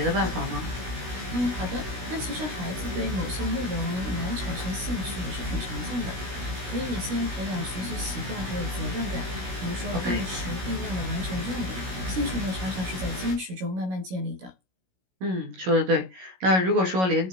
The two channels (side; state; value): left; late; 16 ms